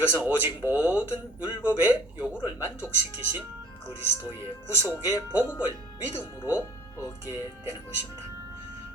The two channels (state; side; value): normal; both; correlation 0.52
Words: 오직 모든 율법의 요구를 만족시키신 그리스도의 구속의 복음을 믿음으로 얻게 되는 것입니다.